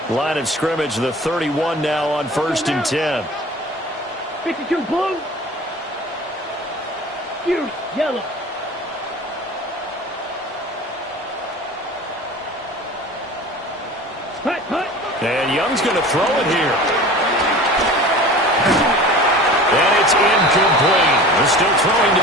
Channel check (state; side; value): normal; both; correlation 0.39